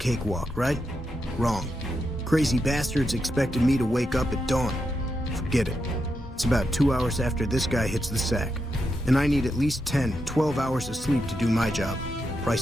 right? Wrong. Crazy bastards expected me to wake up at dawn. Forget it. It's about 2 hours after this guy hits the sack. And I need at least 10, 12 hours of sleep to do my job.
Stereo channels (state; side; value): normal; both; correlation 0.85